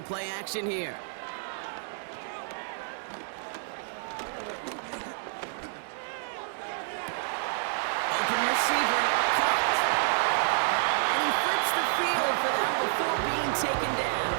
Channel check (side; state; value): left; silent; digital silence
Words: play action here. Open receiver, caught. And he flips the field for them before being taken down.